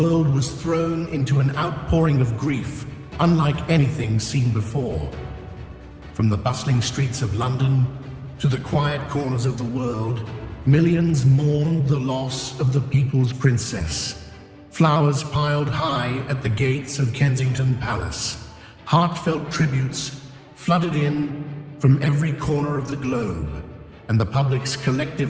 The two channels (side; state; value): both; identical; correlation 1.00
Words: was thrown into an outpouring of grief unlike anything seen before. From the bustling streets of London to the quiet corners of the world, millions mourned the loss of the people's princess. Flowers piled high at the gates of Kensington Palace. Heartfelt tributes flooded in from every corner of the globe, and the public's